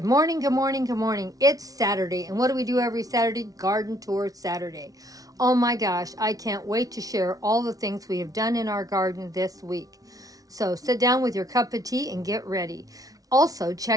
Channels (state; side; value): late; left; 0.18 ms